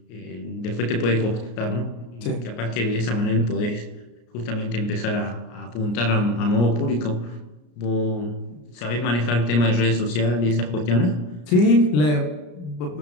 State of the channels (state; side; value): late; right; 33 ms